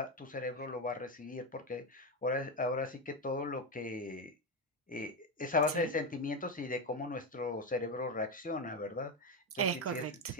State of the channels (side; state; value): both; normal; correlation 0.11